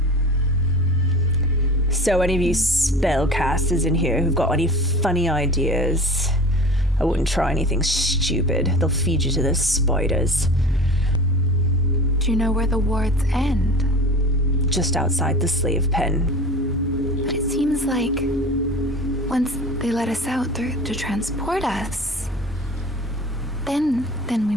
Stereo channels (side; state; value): both; normal; correlation 0.37